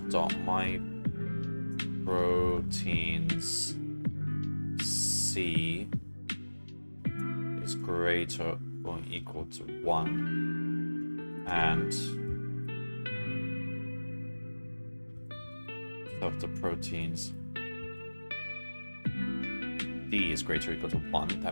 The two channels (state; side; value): inverted; both; correlation -1.00